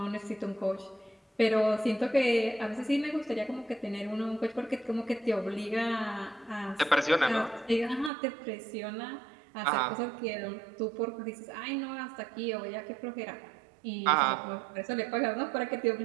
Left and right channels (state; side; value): drops out; left; at 8.1 s